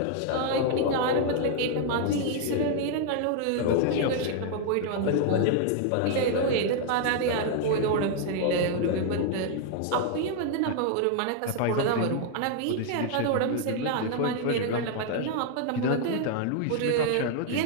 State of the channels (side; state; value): both; different; correlation 0.00